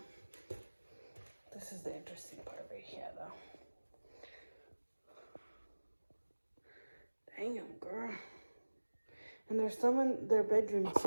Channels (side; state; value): both; inverted; correlation -1.00